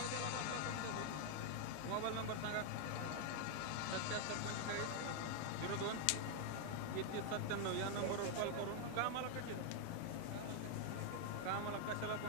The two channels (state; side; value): different; both; correlation 0.00